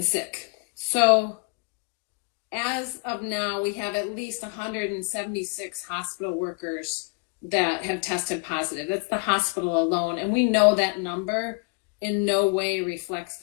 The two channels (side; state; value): right; quieter; 33.4 dB